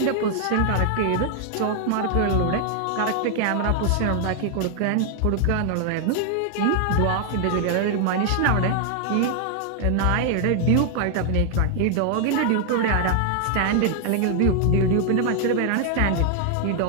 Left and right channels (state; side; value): different; both; correlation 0.00